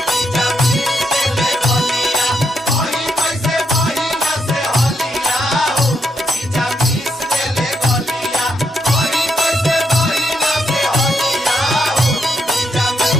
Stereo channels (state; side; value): normal; both; correlation 0.79